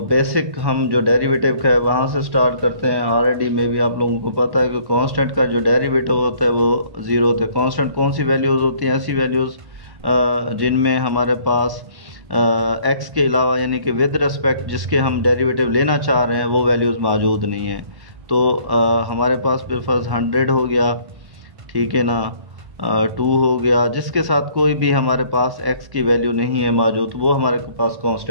बेसिक हम जो डेरिवेटिव का है वहाँ से स्टार्ट करते हैं। ऑलरेडी में भी आप लोगों को पता है कि कांस्टेंट का जो डेरिवेटिव होता है वो ज़ीरो होता है। कांस्टेंट कौन सी वैल्यूज़ होती हैं? ऐसी वैल्यूज़ जिनमें हमारे पास एक्स के अलावा यानी कि विद रिस्पेक्ट जिसके हम डेरिवेटिव लेना चाह रहे हैं वो वैल्यूज़ मौजूद नहीं है। तो हमारे पास बिलफर्ज 100 हो गया, ठीक है ना, 2 हो गया, जिसके साथ कोई भी हमारे पास x की वैल्यू नहीं है मौजूद, वो हमारे पास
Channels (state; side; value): late; left; 1.1 ms